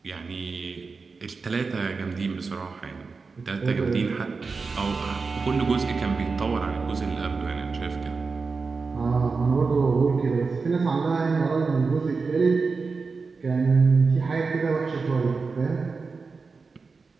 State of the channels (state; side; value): quieter; left; 4.5 dB